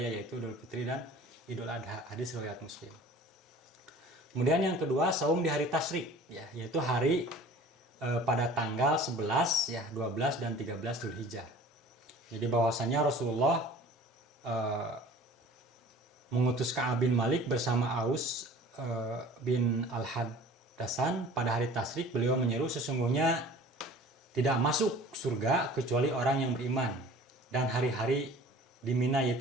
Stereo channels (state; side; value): normal; both; correlation 0.45